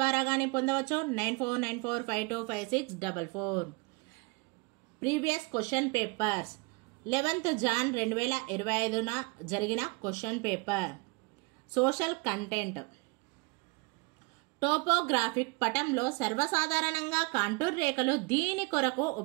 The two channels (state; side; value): quieter; left; 29.3 dB